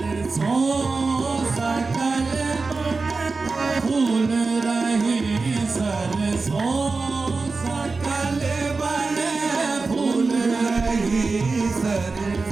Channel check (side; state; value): left; quieter; 4.0 dB